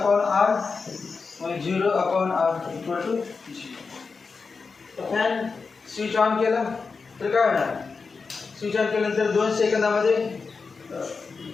r, मग zero upon R equal to zero. तर फॅन स्विच ऑन केला तर काय होणार, स्विच ऑन केल्यानंतर 2 सेकंदामध्ये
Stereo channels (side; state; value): right; quieter; 4.7 dB